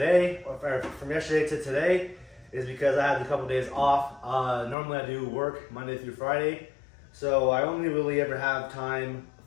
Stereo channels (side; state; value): right; drops out; at 4.8 s